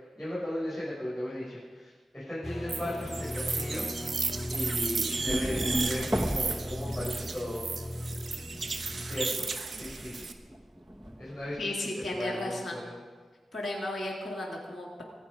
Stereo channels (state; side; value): normal; both; correlation 0.92